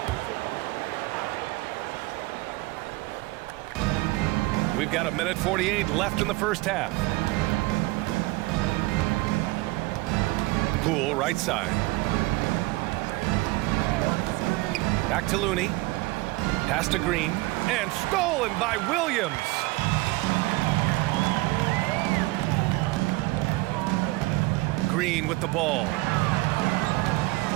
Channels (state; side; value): quieter; left; 21.4 dB